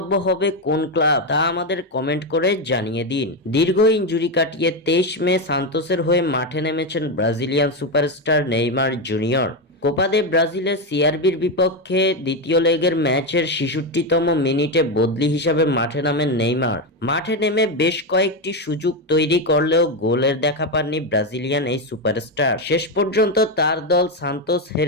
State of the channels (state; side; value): normal; both; correlation 0.10